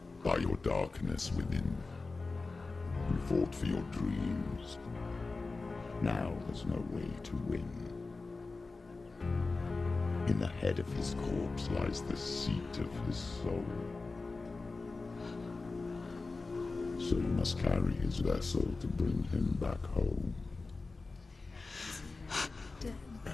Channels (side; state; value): right; quieter; 3.7 dB